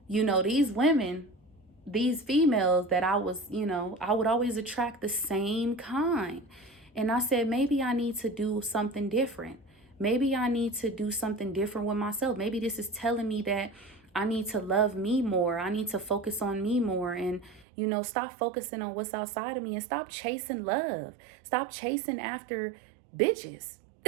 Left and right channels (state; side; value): drops out; left; at 17.7 s